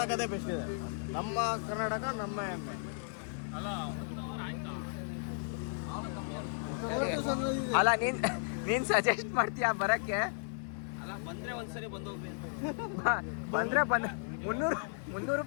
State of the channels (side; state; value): right; silent; 55 dB below the other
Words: ಬೆಸ್ಟ್ ಇದೆ. ನಮ್ಮ ಕರ್ನಾಟಕ ನಮ್ಮ ಹೆಮ್ಮೆ. ಅಲ್ಲ ನೀನ್ ಸಜೆಸ್ಟ್ ಮಾಡ್ತೀಯಾ ಬರಕ್ಕೆ? ಬಂದ್ರೆ ಒಂದ್ಸರಿ ಬಂದೋಗ್ರಿ. ಬಂದ್ರೆ 300